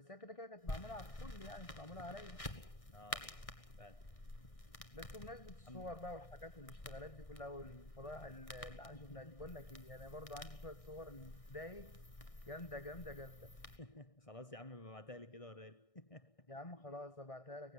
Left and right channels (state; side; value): late; right; 1.6 ms